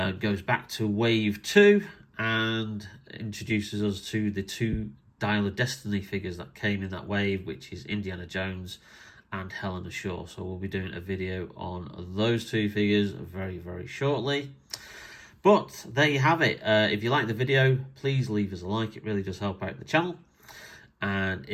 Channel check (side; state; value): both; identical; correlation 1.00